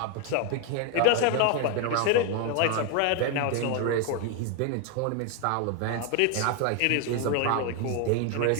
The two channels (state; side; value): different; both; correlation 0.01